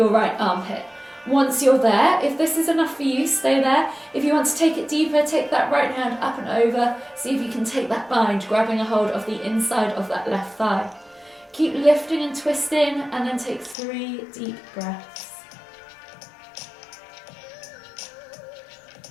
right armpit. Once you're there, if this is enough for you, stay there. If you want to take it deeper, take that right hand up and over. See if you can take that bind, grabbing a hold of the inside of that left thigh. Keep lifting and twisting, and then take 3 deep breaths.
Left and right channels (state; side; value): drops out; right; at 13.8 s